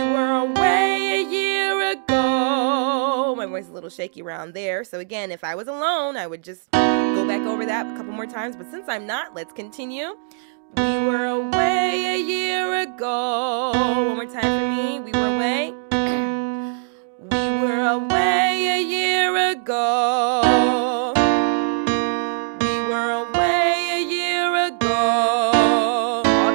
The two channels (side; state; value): left; silent; digital silence